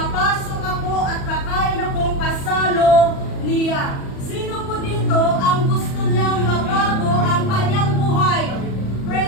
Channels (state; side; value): late; right; 37 ms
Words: ako at kakain akong kasalo niya. Sino po dito ang gusto niyang mabago ang kanyang buhay?